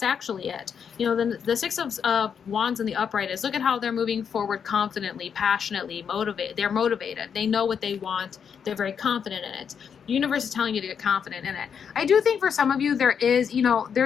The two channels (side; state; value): right; quieter; 7.2 dB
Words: actually it. The Six of Wands in the upright is, look at how they're moving forward confidently, passionately, motivated. They're motivated. They know what they want. They're very confident in it. The universe is telling you to get confident in it. I do think for some of you,